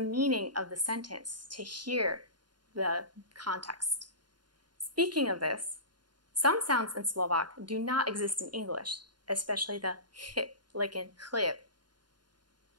of the sentence to hear the context. Speaking of this, some sounds in Slovak do not exist in English, especially the h, like in chleb.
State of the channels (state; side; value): late; left; 0.71 ms